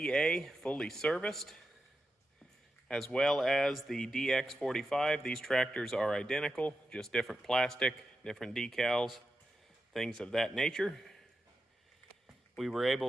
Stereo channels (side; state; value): both; normal; correlation 0.89